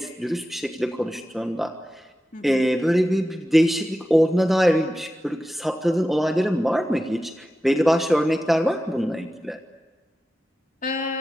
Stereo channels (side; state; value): both; normal; correlation 0.93